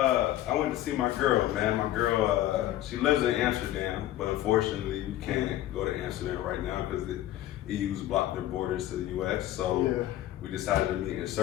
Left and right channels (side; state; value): right; quieter; 13.9 dB